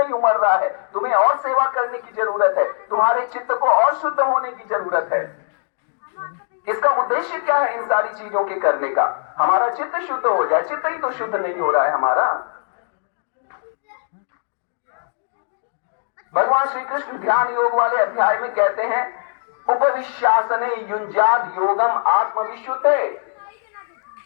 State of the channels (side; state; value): right; silent; digital silence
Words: उमड़ रहा है, तुम्हें और सेवा करने की जरूरत है, तुम्हारे चित्त को और शुद्ध होने की जरूरत है। इसका उद्देश्य क्या है इन सारी चीजों के करने का? हमारा चित्त शुद्ध हो जाए। चित्त ही तो शुद्ध नहीं हो रहा है हमारा। भगवान श्री कृष्ण ध्यान योग वाले अध्याय में कहते हैं, उपविश्यासने युंजाद योगम आत्मविशुद्धे।